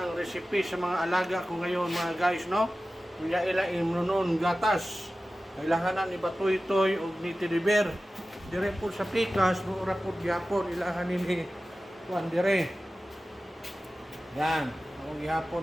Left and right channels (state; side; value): normal; both; correlation 0.95